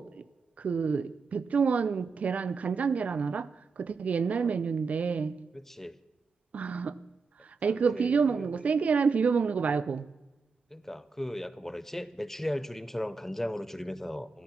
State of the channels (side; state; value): left; quieter; 4.7 dB